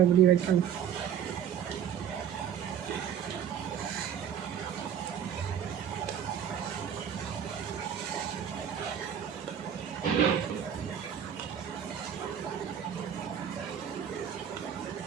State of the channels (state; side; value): quieter; left; 8.8 dB